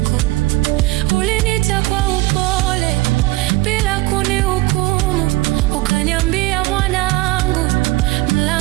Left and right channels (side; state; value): left; quieter; 20.2 dB